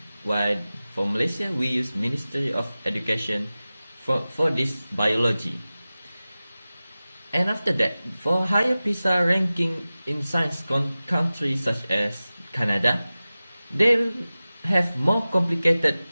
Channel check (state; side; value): inverted; both; correlation -0.97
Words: while for Malaysia we use Ministry of Education for this biology. And after that, for higher PISA ranking in science countries such as Canada, they have more complicated